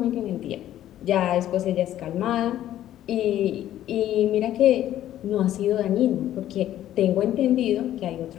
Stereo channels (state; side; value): quieter; right; 12.5 dB